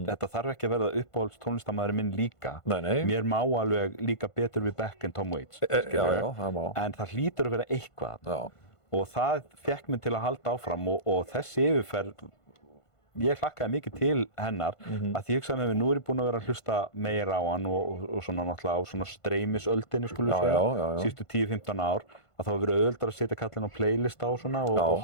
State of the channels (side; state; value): right; late; 1.5 ms